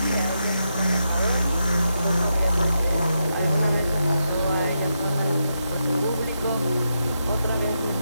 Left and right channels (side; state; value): both; inverted; correlation -0.85